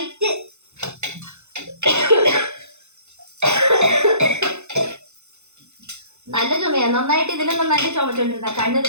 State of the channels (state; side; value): late; left; 0.82 ms